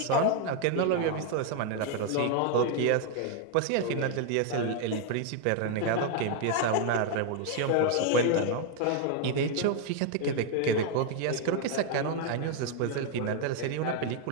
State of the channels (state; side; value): different; both; correlation 0.00